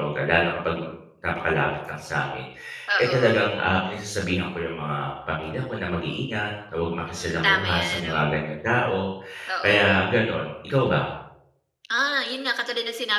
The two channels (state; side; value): identical; both; correlation 1.00